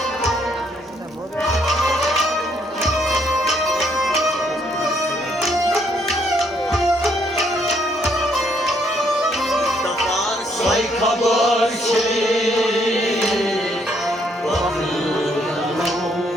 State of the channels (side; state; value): both; normal; correlation 0.70